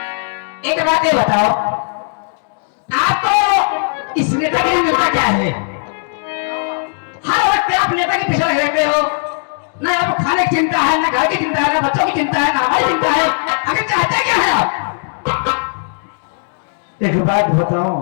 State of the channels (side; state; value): right; silent; digital silence